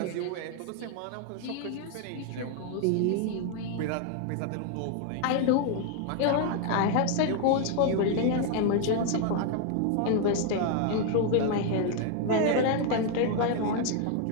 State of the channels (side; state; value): both; different; correlation 0.00